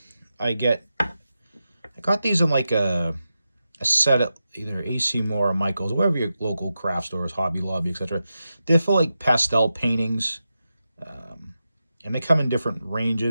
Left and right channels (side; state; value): both; inverted; correlation -0.90